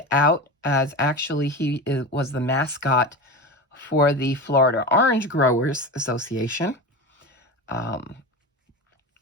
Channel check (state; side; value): normal; both; correlation 0.26